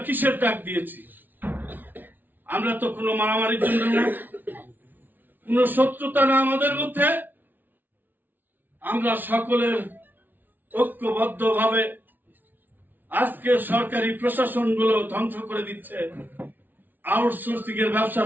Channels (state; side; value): late; left; 0.087 ms